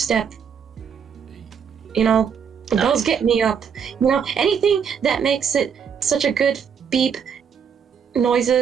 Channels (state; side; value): quieter; left; 7.1 dB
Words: Those get me up. Anything that makes it such a good beep